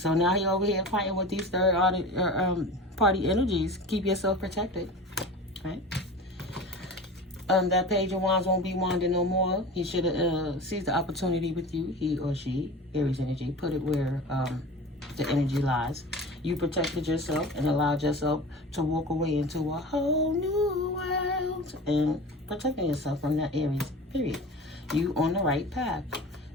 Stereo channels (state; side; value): normal; both; correlation 0.34